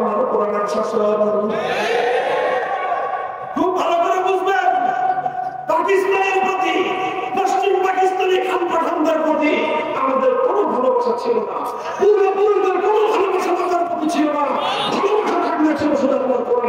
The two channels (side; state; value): both; identical; correlation 1.00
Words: কোরআনের শাসন। খুব ভালো করে বুঝবেন, পাকিস্তানের প্রতি, পশ্চিম পাকিস্তানি খান পাঠানদের প্রতি আমাদের কোনো ভালোবাসা ছিল না, পূর্বপুরুষদের কোনো ভালোবাসা তাদের প্রতি ছিল না। ভালোবাসা থাকলে ছিল শুধু আল্লাহর